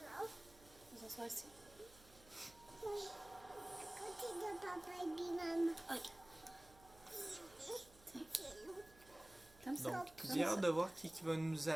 s'assoit ici. À côté de papa et de maman. Ok. Comme ça. Donc, j'ai hâte de voir qui va nous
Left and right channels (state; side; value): noise; right; hum, 23 dB below the sound